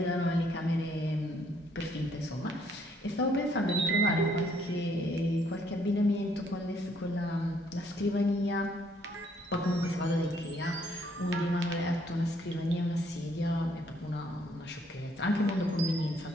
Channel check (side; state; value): both; normal; correlation 0.67